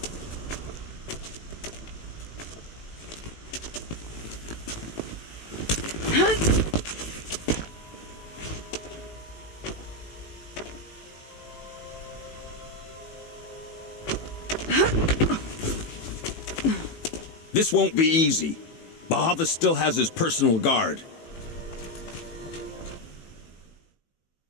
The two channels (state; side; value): late; right; 18 ms